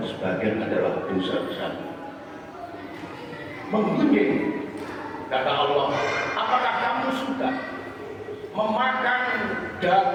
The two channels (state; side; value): identical; both; correlation 1.00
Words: sebagian adalah dosa besar. Menggunjing, kata Allah, apakah kamu suka memakan